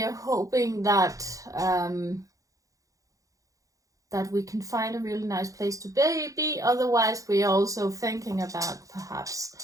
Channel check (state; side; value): late; left; 0.16 ms